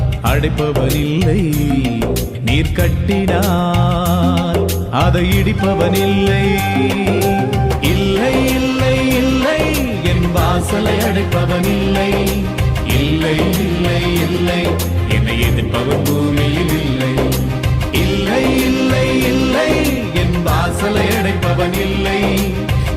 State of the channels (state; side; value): identical; both; correlation 1.00